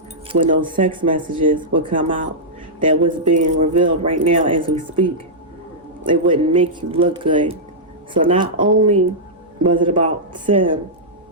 when those text messages would come out that was being revealed right now as we speak. It wouldn't make you look good. So not only was it about Sim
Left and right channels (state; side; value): normal; both; correlation -0.11